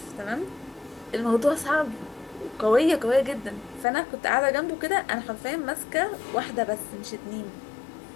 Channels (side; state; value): right; drops out; at 3.9 s